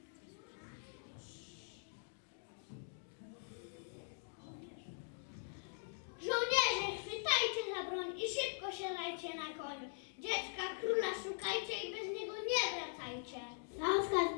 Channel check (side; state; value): right; silent; digital silence